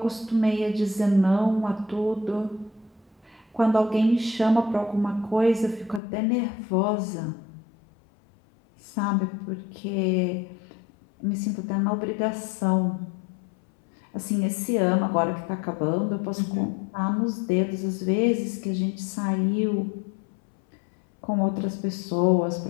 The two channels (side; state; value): right; drops out; at 6.0 s